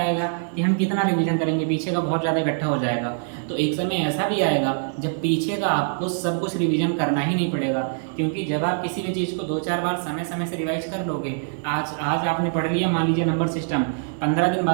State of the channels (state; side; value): silent; left; 63 dB below the other